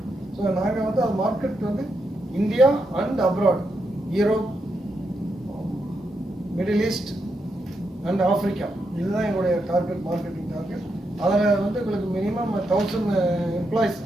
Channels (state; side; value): normal; both; correlation 0.83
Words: So the market India and abroad, Europe, Middle East and Africa. This is our target marketing target. Minimum 1,000 employees,